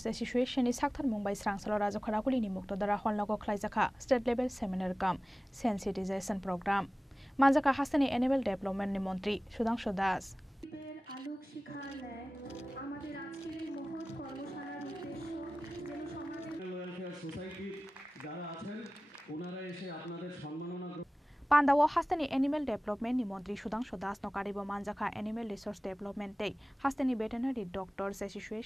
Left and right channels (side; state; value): both; normal; correlation 0.97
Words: Association is Sakthar Mumbai Srangsalo Rajakharakuli ni Muktodara Honlago Khlaijaka State Level Seminar Kam Sensitization Program Manjaka Hasteni Animal Development ni Montri Sudhanshu Das Pandawo Hasteni Animal Development ni Montri Sudhanshu Das nokaribo Manjaka Animal Resource Development Day Hasteni Veterinary Doctors